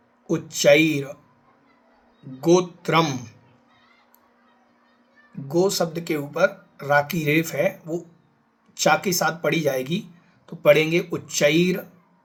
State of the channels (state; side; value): identical; both; correlation 1.00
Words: उच्चैर, गोत्रम। गो शब्द के ऊपर रा की रेफ है, वो चा के साथ पढ़ी जाएगी, तो पढ़ेंगे उच्चैर